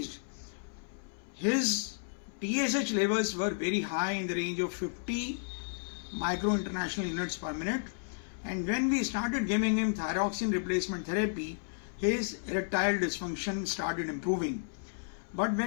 His TSH levels were very high in the range of 50 micro international units per minute. And when we started giving him thyroxine replacement therapy, his erectile dysfunction started improving. But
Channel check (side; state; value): right; silent; 56 dB below the other